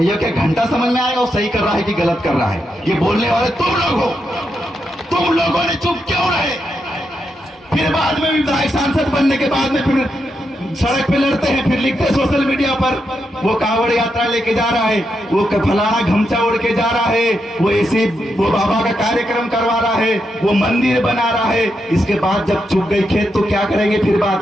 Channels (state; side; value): normal; both; correlation 0.84